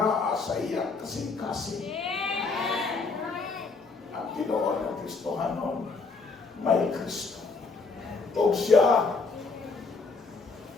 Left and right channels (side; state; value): right; quieter; 4.2 dB